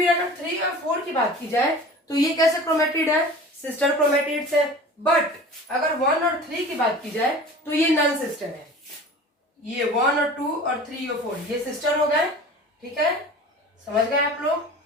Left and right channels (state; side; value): normal; both; correlation 0.40